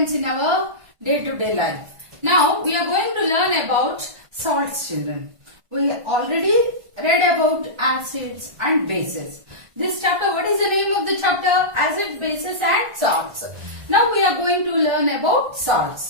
in our day-to-day life. Now we are going to learn about salts children. We already read about acids and bases. This chapter, what is the name of the chapter? Acids, bases and salts. Now we are going to learn about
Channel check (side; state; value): left; late; 1.5 ms